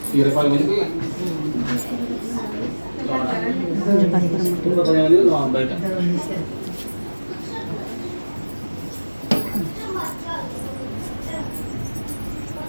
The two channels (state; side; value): inverted; both; correlation -1.00